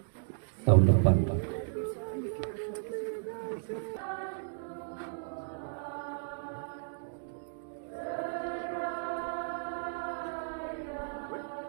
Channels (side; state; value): left; silent; digital silence